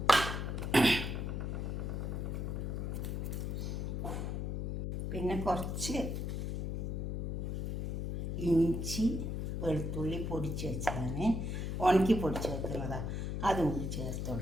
പിന്നെ കുറച്ച് ഇഞ്ചി വെളുത്തുള്ളി പൊടിച്ച് വെച്ചതാണ്, ഉണക്കി പൊടിച്ച് വെക്കുന്നതാണ്. അതും കൂടി ചേർത്ത്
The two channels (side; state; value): left; noise; hum, 2 dB below the sound